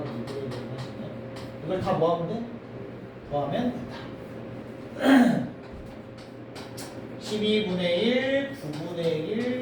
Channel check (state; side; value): identical; both; correlation 1.00